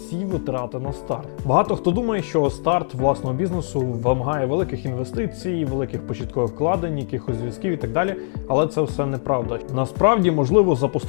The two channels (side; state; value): right; silent; digital silence